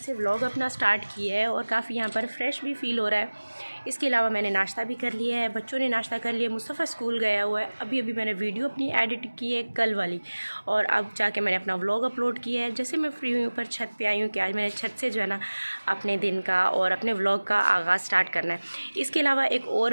व्लॉग अपना स्टार्ट किया है और काफ़ी यहाँ पर फ्रेश भी फील हो रहा है। इसके अलावा मैंने नाश्ता भी कर लिया है, बच्चों ने नाश्ता कर लिया, मुस्तफ़ा स्कूल गया हुआ है। अभी मैंने वीडियो अपनी एडिट की है कल वाली, और अब जाके मैंने अपना व्लॉग अपलोड किया है। जैसे मैं फ्री हुई ऊपर छत पे आई हूँ कि आज मैंने छत से जो है ना अपने दिन का और अपने व्लॉग का आगाज़ स्टार्ट करना है। इसके अलावा एक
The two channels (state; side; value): inverted; both; correlation -1.00